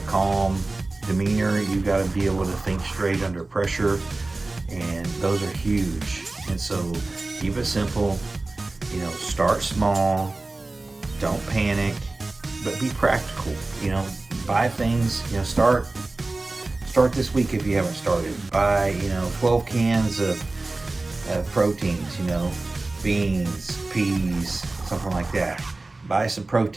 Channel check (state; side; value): quieter; left; 3.2 dB